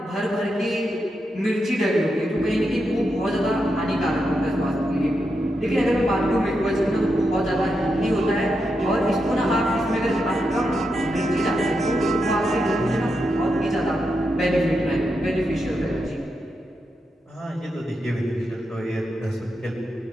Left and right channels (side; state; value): both; normal; correlation 0.85